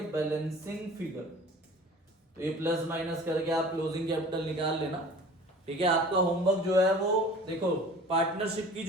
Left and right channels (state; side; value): normal; both; correlation 0.44